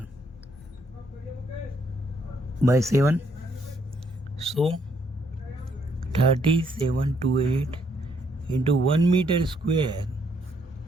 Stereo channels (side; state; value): both; normal; correlation 0.71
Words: by 7. So 3728 into 1 meter square